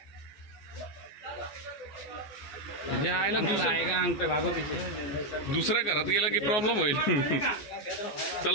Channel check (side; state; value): right; late; 14 ms